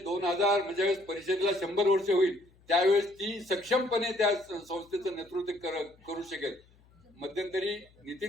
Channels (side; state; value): left; noise; hum, 29 dB below the sound